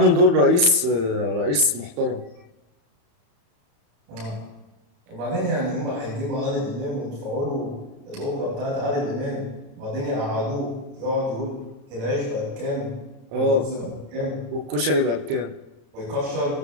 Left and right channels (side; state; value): left; late; 34 ms